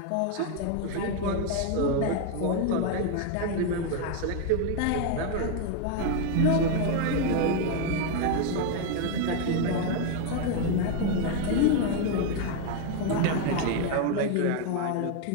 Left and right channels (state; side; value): different; both; correlation 0.01